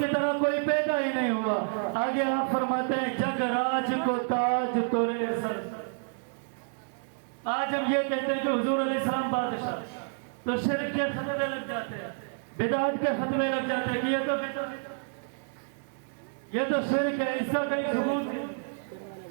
طرح کوئی پیدا ہی نہیں ہوا۔ آگے آپ فرماتے ہیں جگ راج کو تاج تورے سر۔ آج ہم یہ کہتے ہیں کہ حضور علیہ السلام بادشاہ، تو شرک کے فتوے لگ جاتے ہیں، بدعت کے فتوے لگ جاتے ہیں کہ یہ تو بدعت، یہ تو شرک ہے، اس کا کہیں ثبوت ہے۔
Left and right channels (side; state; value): left; silent; 58 dB below the other